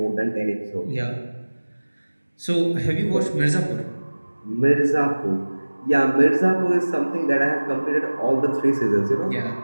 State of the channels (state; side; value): inverted; both; correlation -1.00